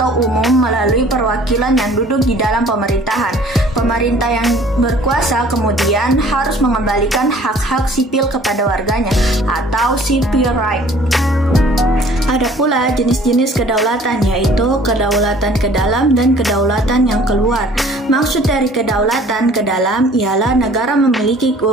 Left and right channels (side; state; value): both; normal; correlation 0.52